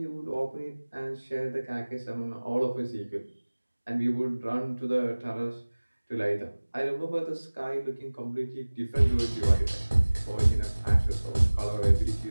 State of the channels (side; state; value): both; inverted; correlation -1.00